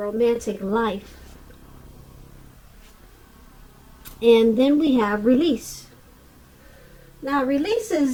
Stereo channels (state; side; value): identical; both; correlation 1.00